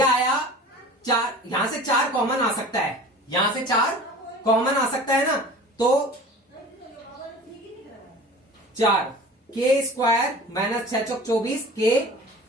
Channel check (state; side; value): normal; both; correlation 0.40